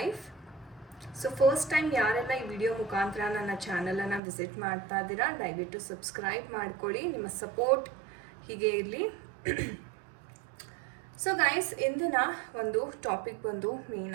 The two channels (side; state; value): left; drops out; at 4.2 s